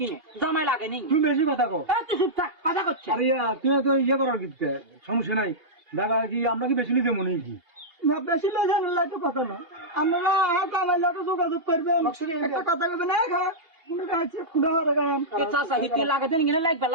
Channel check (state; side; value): late; left; 2.8 ms